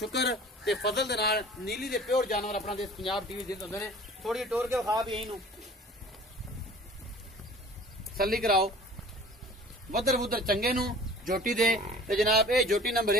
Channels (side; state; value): both; normal; correlation 0.46